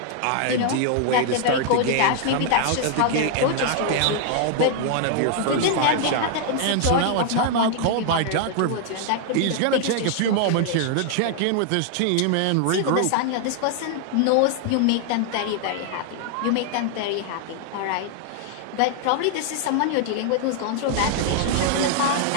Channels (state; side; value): different; both; correlation 0.00